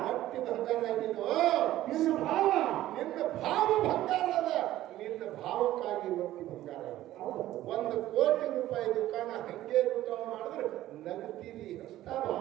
ರೊಟ್ಟಿ ಬಂಗಾರ ಆಗಿದ್ದು ನಿನ್ನ ಭಾವ ಬಂಗಾರ ಅದ. ನಿನ್ನ ಭಾವಕ್ಕಾಗಿ ರೊಟ್ಟಿ ಬಂಗಾರ ಅದ. 1 ಕೋಟಿ ರೂಪಾಯಿ ದುಕಾನ ಹಂಗೆ ದುಕಾನ ಮಾಡಿದ್ರೆ ನಗ್ತೀರಿ ಅಷ್ಟ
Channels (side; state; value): left; quieter; 14.4 dB